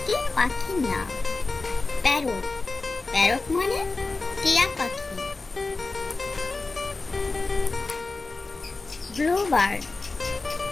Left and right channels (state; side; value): quieter; right; 3.7 dB